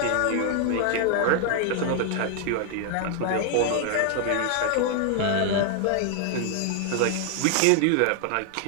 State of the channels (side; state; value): both; different; correlation 0.00